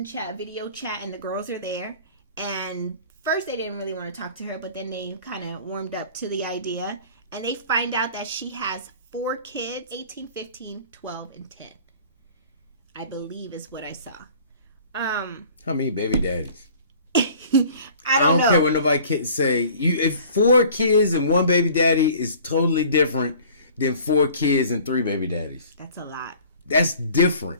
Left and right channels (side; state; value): both; inverted; correlation -0.48